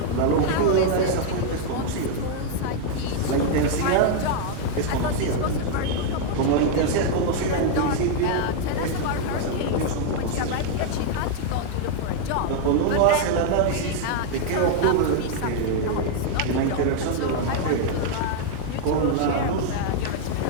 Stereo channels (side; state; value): both; different; correlation 0.00